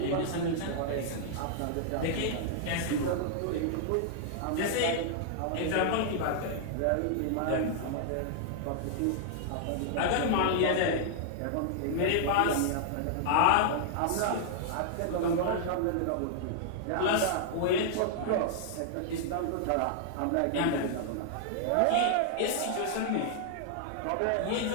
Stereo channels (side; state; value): both; different; correlation -0.01